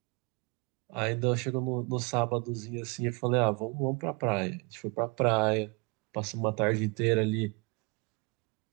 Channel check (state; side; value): quieter; left; 30.2 dB